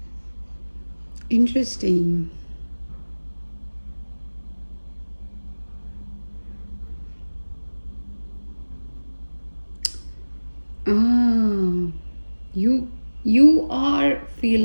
Interesting. Ah, you you are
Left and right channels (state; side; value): inverted; both; correlation -1.00